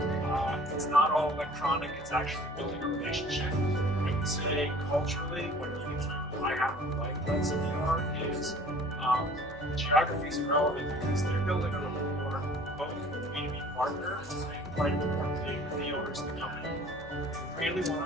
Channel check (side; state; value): both; normal; correlation 0.50